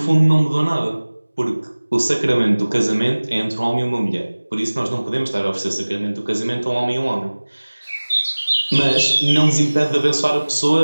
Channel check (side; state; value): both; inverted; correlation -1.00